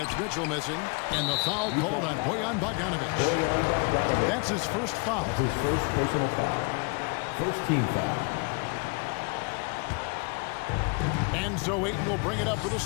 Mitchell missing. And the foul called on Bojan Bogdanovich. That's his first foul. That's his first personal foul. First team foul. And so Ayton will bring it up for the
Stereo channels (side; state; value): right; quieter; 33.3 dB